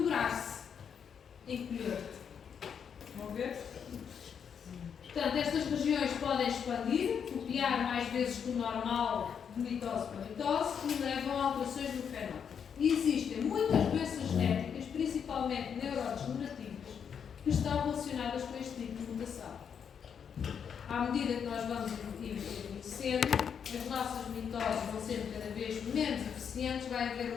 encolher-se. Vão ver? Portanto, estas regiões podem expandir, copiar mais vezes que o normal de mitose para mitose e levam a alterações no fenótipo. E existem muitas doenças genéticas, principalmente neurodegenerativas, que estão relacionadas com este tipo de mutação. À medida que nós vamos envelhecendo, as nossas mitoses vão sendo cada vez menos eficientes, vai haver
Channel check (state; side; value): quieter; right; 7.4 dB